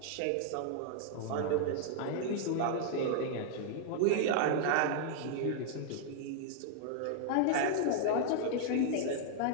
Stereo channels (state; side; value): different; both; correlation -0.01